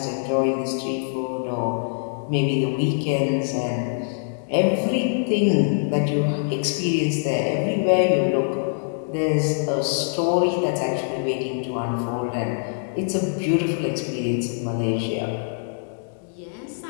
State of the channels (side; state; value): right; silent; digital silence